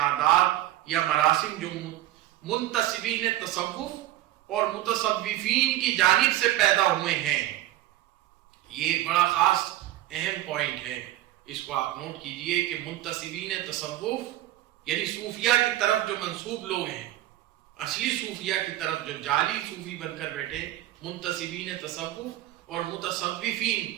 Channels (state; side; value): quieter; left; 14.5 dB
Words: یا مراسم جو منتسبین تصوف اور متصوفین کی جانب سے پیدا ہوئے ہیں، یہ ایک بڑا خاص اہم پوائنٹ ہے، اس کو آپ نوٹ کیجئے کہ منتسبین تصوف یعنی صوفیہ کی طرف جو منسوب لوگ ہیں، اصلی صوفیہ کی طرف جو جعلی صوفی بن کر بیٹھے، منتسبین تصوف اور